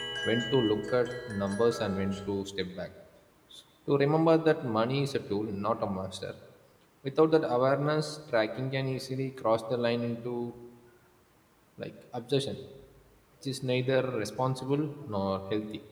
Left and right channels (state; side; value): identical; both; correlation 1.00